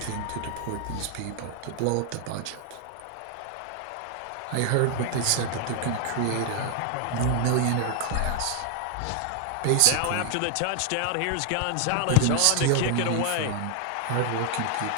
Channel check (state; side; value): different; both; correlation 0.00